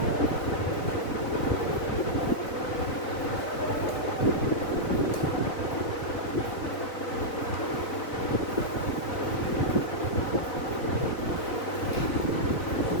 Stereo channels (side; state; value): right; late; 4.0 ms